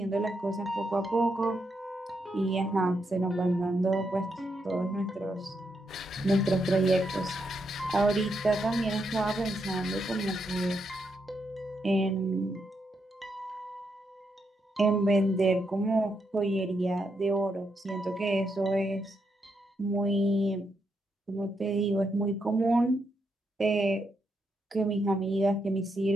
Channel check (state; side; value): normal; both; correlation 0.81